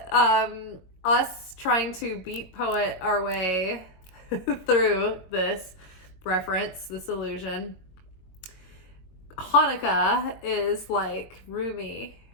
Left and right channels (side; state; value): right; late; 21 ms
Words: us trying to beat poet our way through this reference, this illusion. Chanukah is like Rumi's